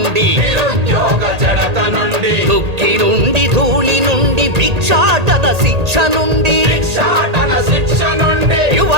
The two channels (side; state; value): left; late; 1.8 ms